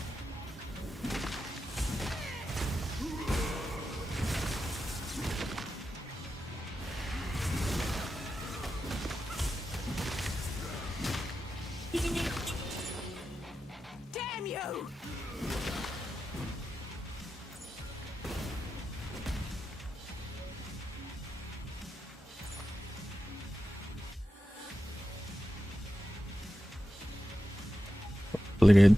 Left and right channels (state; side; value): normal; both; correlation 0.91